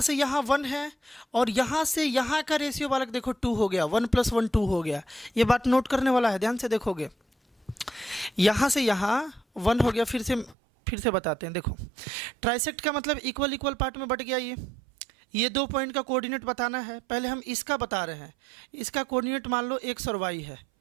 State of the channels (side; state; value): left; drops out; at 10.6 s